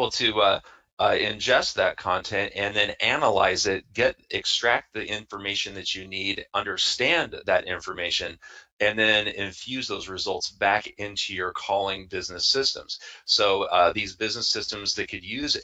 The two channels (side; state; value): both; identical; correlation 1.00